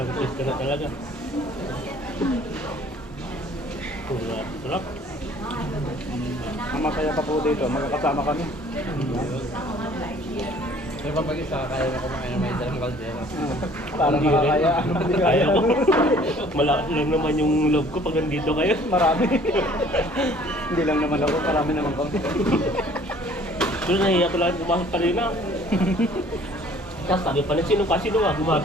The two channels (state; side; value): normal; both; correlation 0.54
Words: pwesto na talaga. Sarap. Ang masaya pa po dito, magkakasama kami. May pag isa, kaya na kumain na may dalang kaldero. Parang Hindi rin. makakaya. Kaya ko. Malakas lang naman yung love ko pag nandito kayo. Marami. Hindi lang naman ako, marami naman kami. Doon nahiya ko lang kumakit pa rin na. Tapos sabi pa na sino ba?